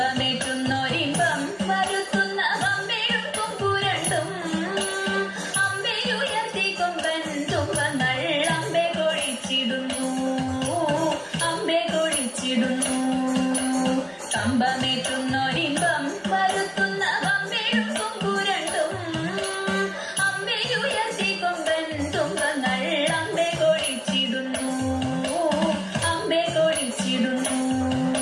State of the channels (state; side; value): identical; both; correlation 1.00